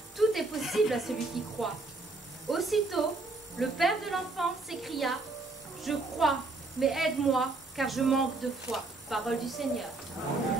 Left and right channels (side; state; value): left; quieter; 3.3 dB